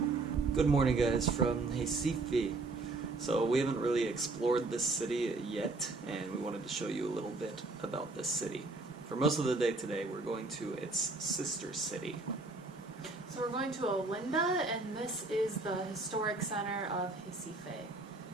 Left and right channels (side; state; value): left; quieter; 3.4 dB